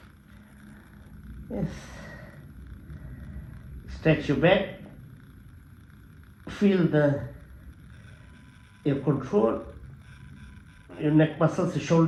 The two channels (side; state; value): both; identical; correlation 1.00